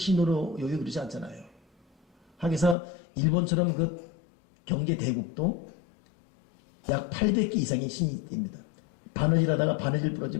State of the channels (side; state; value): right; drops out; at 2.8 s